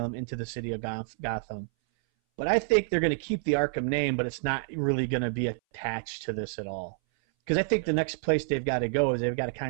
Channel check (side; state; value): left; silent; 59 dB below the other